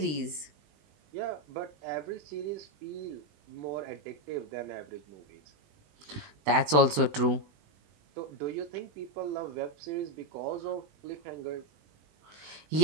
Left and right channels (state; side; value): late; left; 20 ms